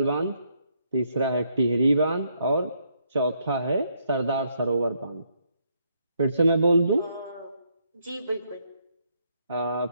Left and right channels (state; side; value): inverted; both; correlation -0.74